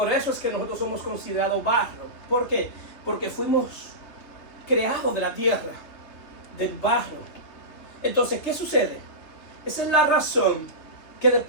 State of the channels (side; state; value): right; late; 3.3 ms